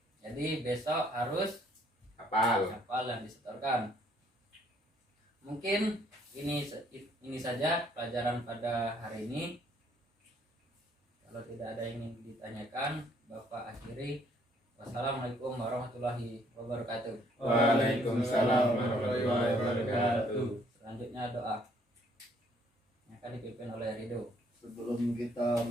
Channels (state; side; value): normal; both; correlation 0.64